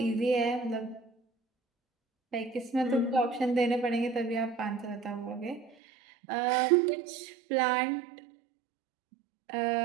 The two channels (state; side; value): drops out; left; at 5.8 s